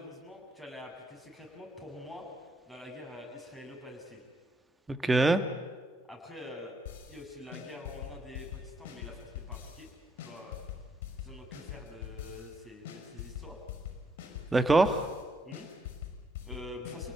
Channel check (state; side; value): normal; both; correlation 0.74